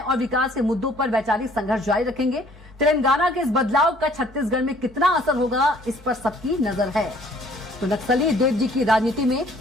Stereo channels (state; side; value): normal; both; correlation 0.57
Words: विकास के मुद्दों पर वैचारिक संघर्ष जारी रखेंगे। तेलंगाना के इस बदलाव का छत्तीसगढ़ में कितना असर होगा, इस पर सबकी नजर है। तो नक्सली देव जी की राजनीति में